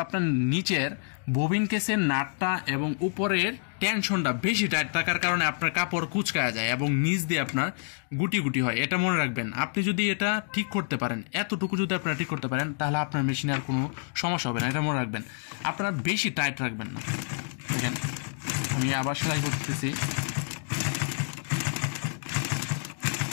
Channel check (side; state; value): right; silent; 59 dB below the other